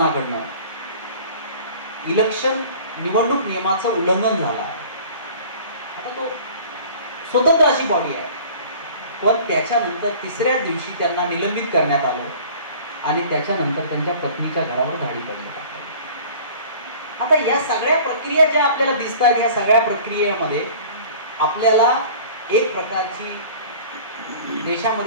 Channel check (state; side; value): inverted; both; correlation -0.45